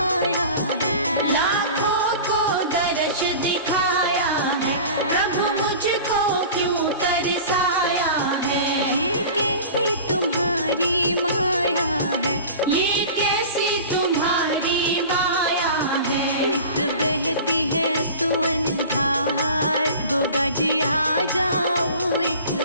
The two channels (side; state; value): both; inverted; correlation -0.38